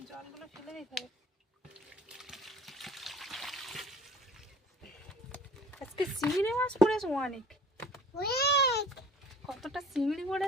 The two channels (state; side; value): normal; both; correlation 0.47